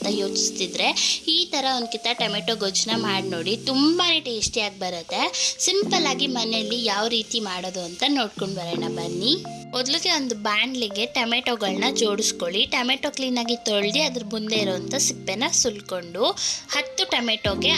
ಯೋಚಿಸ್ತಿದ್ರೆ ಈ ಥರ ಒಂದು ಕಿತ್ತ ಟೊಮೆಟೊ ಗೊಜ್ಜನ್ನ ಮಾಡಿ ನೋಡಿ. ತುಂಬಾ ಟೇಸ್ಟಿಯಾಗಿ ಬರುತ್ತೆ. ಸಿಂಪಲ್ ಆಗಿ ಮನೆಯಲ್ಲಿ ಯಾವ ರೀತಿ ಮಾಡೋದು ಅಂತ ನೋಡ್ಕೊಂಡು ಬರೋಣ ಬನ್ನಿ. ಮೊದಲಿಗೆ ಒಂದು ಬಾಣಲಿಗೆ ಟೊಮೆಟೊಗಳನ್ನ ಜೋಡಿಸ್ಕೊಳ್ಳಿ. ಟೊಮೆಟೊ ಕ್ಲೀನಾಗಿ ತೊಳೆದು ಅದ್ರ ಮುಂದೆ ಇರೋವಂಥ ಸಿಪ್ಪೆನ ಸುಲ್ಕೊಂಡು 10 ಟೊಮೆಟೊಗೆ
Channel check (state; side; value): identical; both; correlation 1.00